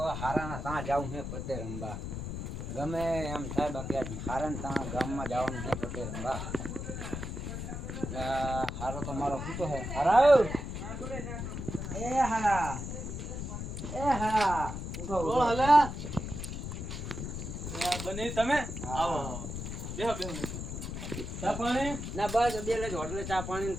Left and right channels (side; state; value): left; noise; rumble, 6 dB below the sound